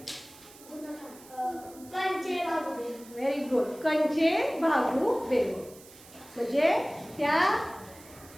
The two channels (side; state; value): right; noise; hiss, 21 dB below the sound